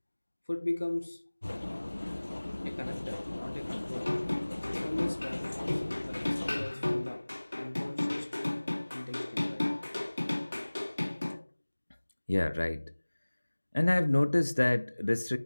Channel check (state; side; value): inverted; both; correlation -1.00